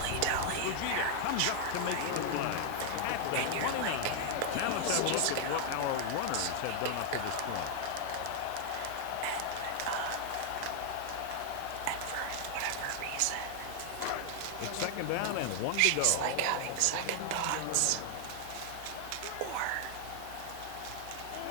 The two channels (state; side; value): different; both; correlation 0.00